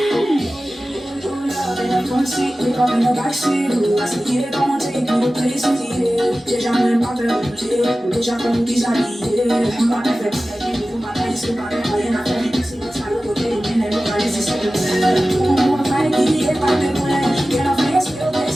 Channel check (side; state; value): both; normal; correlation 0.96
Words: in the backseat, I see it, don't take me to places eating. Déjà même pas permuté, déjà comme déshabillé. Ma mère fait pas la vie, ma mère c'est pas rien à faire. C'est le sale côté, mais elle va laisser ça de faire. On va faire qui est pas de loin. Qu'elle a fait, c'est au